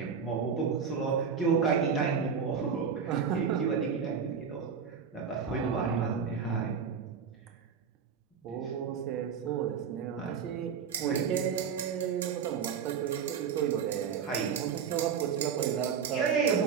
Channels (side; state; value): left; quieter; 6.8 dB